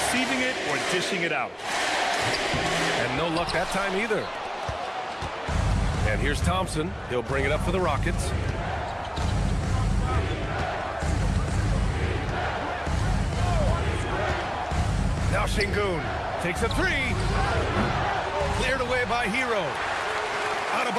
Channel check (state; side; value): identical; both; correlation 1.00